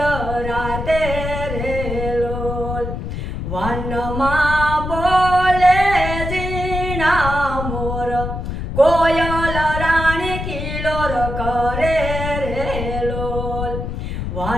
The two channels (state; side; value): noise; left; rumble, 5 dB below the sound